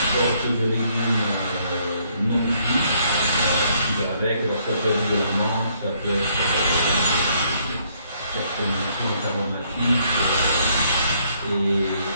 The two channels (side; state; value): both; inverted; correlation -0.68